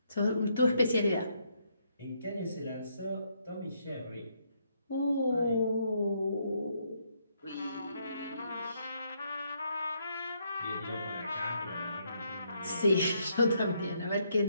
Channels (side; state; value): both; inverted; correlation -0.74